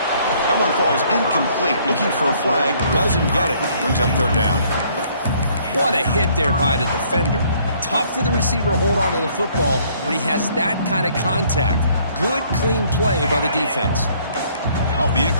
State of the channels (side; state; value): both; inverted; correlation -0.62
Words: That one falls incomplete. Looking for a flag, doesn't get it. Brings up 3rd down. What a hit there by the defender. Tough for the receiver to hold on to the football when he has that kind of contact. Good, clean play by the defense. Off the